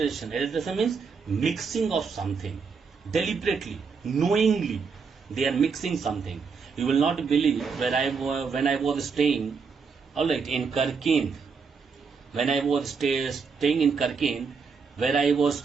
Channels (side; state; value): left; quieter; 5.4 dB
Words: Adulteration means mixing of something deliberately, knowingly. They are mixing something. You will not believe when I was staying, alright, in Karkend. When I was staying in Karkend, where I was